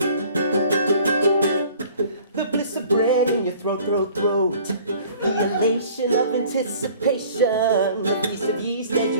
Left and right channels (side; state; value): both; inverted; correlation -0.50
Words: The bliss of bread in your throat. The elation of anticipation. The feast of yeast as